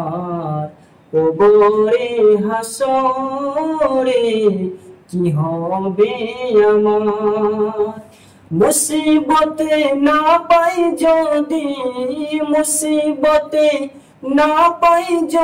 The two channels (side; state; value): both; identical; correlation 1.00